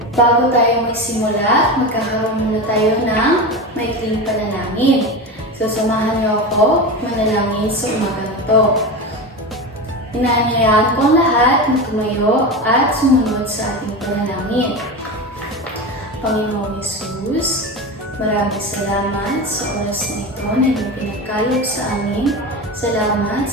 bago tayo magsimula, magkakaroon muna tayo ng maikling panalangin. So samahan niyo ako manalangin sa umaga na ito. Inaanyayahan ko ang lahat na tumayo at sumunod sa ating panalangin. Panginoong Hesus, maraming salamat sa oras na ito na iyong pinagkaloob sa amin. Salamat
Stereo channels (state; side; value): normal; both; correlation 0.23